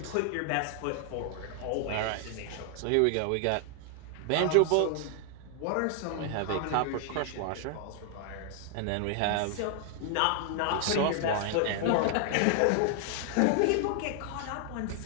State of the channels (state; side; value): different; both; correlation 0.00